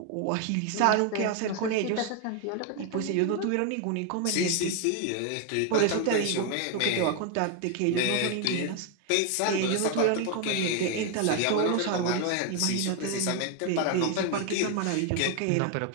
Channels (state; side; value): different; both; correlation 0.01